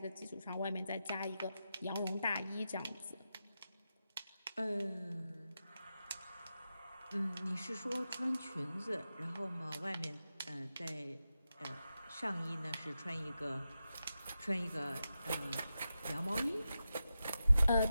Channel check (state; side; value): inverted; both; correlation -0.90